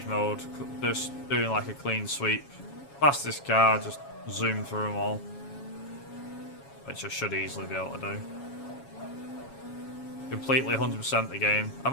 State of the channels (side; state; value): right; late; 7.2 ms